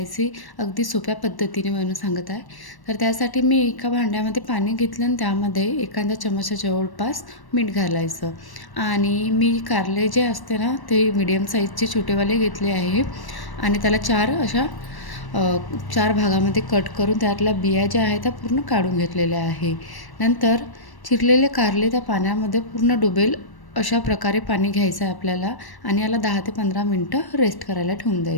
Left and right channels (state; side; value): late; right; 1.1 ms